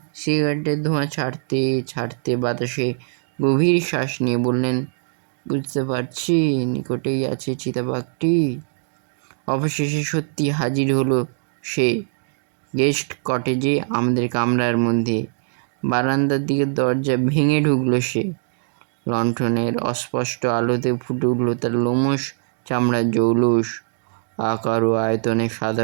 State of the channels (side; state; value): left; silent; digital silence